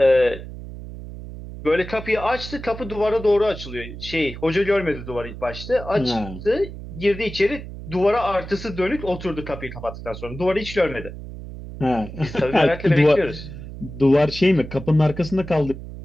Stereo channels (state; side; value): noise; right; hum, 12 dB below the sound